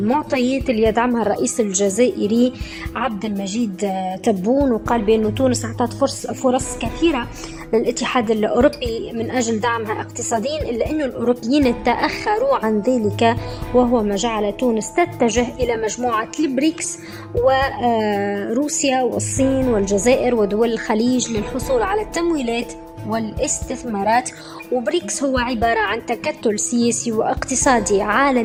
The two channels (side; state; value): both; identical; correlation 1.00